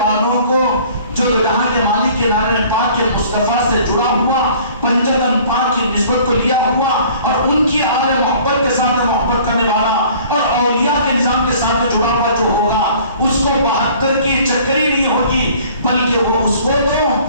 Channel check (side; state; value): both; inverted; correlation -0.52